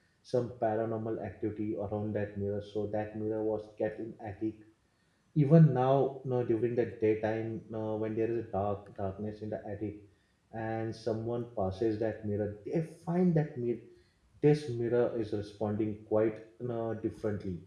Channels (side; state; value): both; identical; correlation 1.00